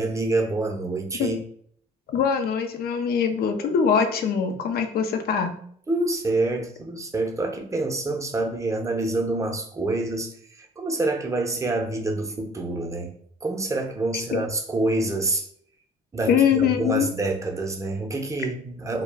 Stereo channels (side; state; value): both; normal; correlation 0.49